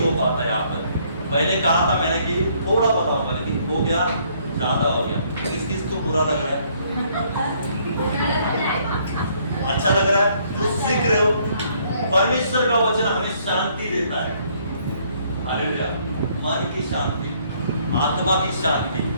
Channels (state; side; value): inverted; both; correlation -0.66